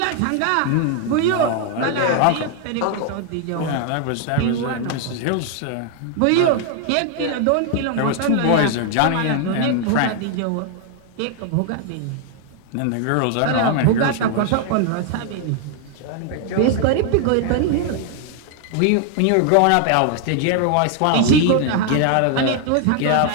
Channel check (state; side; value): different; both; correlation 0.00